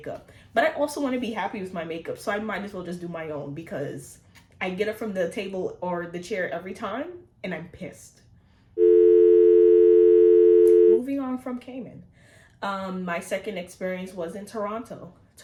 But I also want to be happy with my makeup, so I might as well just do my own because I get it from the table or the chair every time, and I'm pissed. Moving on from Cayman. My second experience was in Toronto.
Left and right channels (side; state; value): both; identical; correlation 1.00